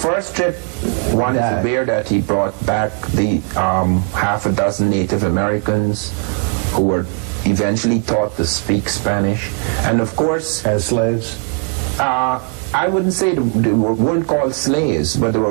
trip, one is aware that he brought back the half a dozen Native Americans who were eventually taught to speak Spanish, and of course, as slaves. I wouldn't say they weren't called slaves, but they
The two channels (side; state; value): left; quieter; 39.8 dB